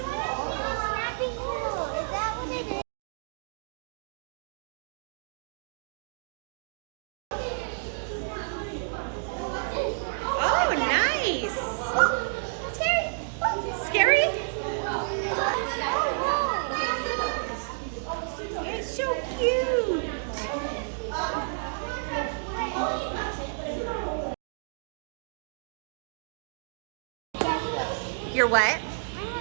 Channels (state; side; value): silent; left; digital silence